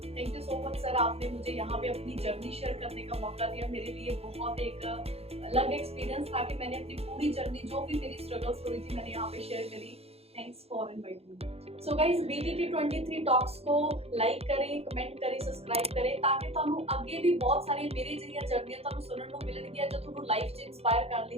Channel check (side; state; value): left; late; 0.29 ms